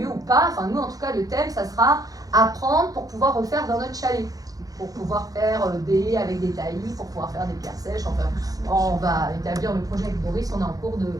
ou pas. Enfin nous en tout cas le thème ça sera apprendre pour pouvoir refaire dans notre chalet. Pour pouvoir faire des avec des taillis, pour pouvoir faire des pierres sèches. Enfin, on va établir le projet avec Boris, on est en cours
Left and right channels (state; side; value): late; left; 0.17 ms